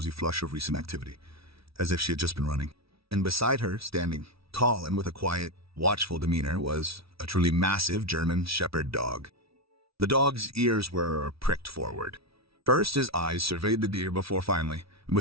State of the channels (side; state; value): left; late; 0.76 ms